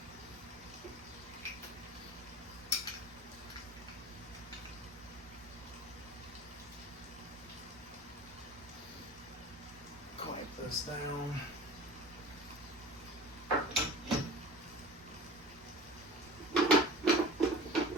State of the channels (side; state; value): both; normal; correlation 0.38